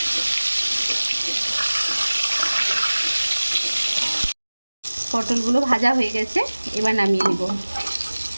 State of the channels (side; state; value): both; inverted; correlation -1.00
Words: পটলগুলো ভাজা হয়ে গেছে, এবার নামিয়ে নেব।